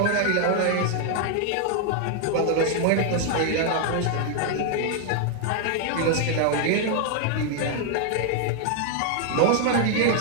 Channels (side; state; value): both; different; correlation 0.00